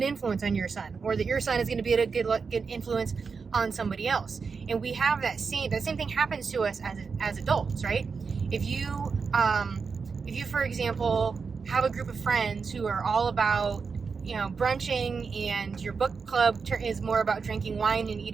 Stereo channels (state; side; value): quieter; left; 5.2 dB